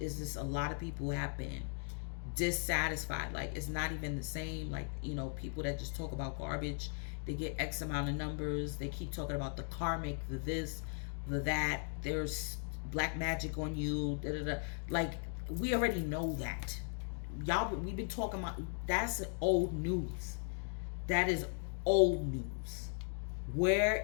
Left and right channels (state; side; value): silent; right; 53 dB below the other